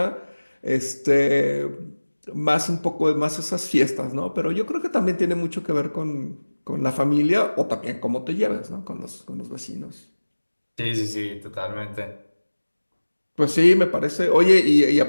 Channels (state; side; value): inverted; both; correlation -1.00